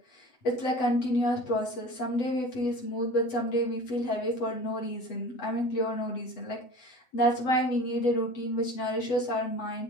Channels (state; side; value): late; right; 8.0 ms